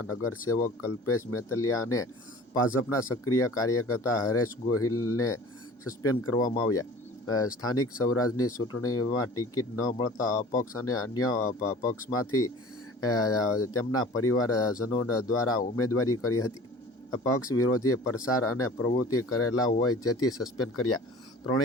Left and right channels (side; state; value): both; normal; correlation 0.43